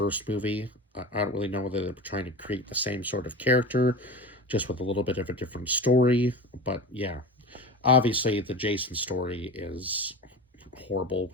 movie. I don't really know whether they were trying to create the same sort of character, just with a little bit of a different story. But yeah, obviously the Jason story is horrible.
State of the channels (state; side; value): normal; both; correlation 0.30